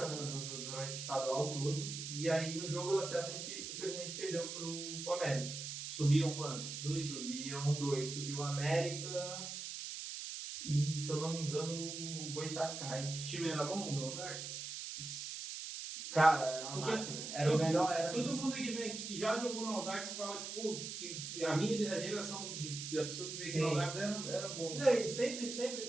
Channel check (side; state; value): right; noise; hiss, 6 dB below the sound